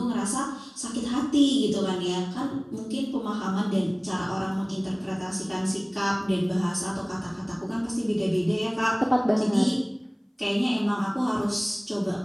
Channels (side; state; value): both; identical; correlation 1.00